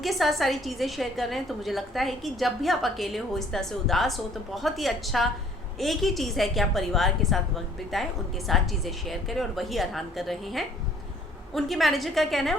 साथ सारी चीज़ें शेयर कर रहे हैं। तो मुझे लगता है कि जब भी आप अकेले हो, इस तरह से उदास हो, तो बहुत ही अच्छा एक ही चीज़ है कि आप परिवार के साथ वक्त बिताएं, उनके साथ चीज़ें शेयर करें, और वही अरहान कर रहे हैं। उनकी मैनेजर का कहना है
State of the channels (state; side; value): normal; both; correlation 0.58